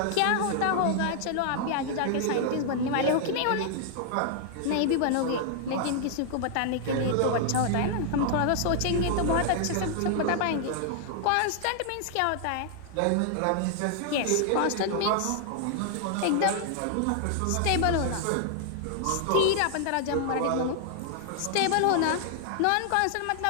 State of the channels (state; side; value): different; both; correlation 0.00